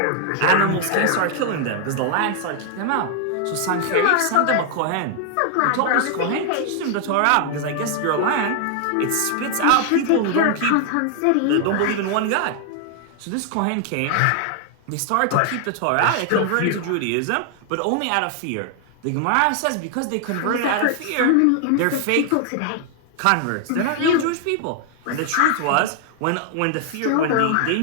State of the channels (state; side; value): different; both; correlation 0.00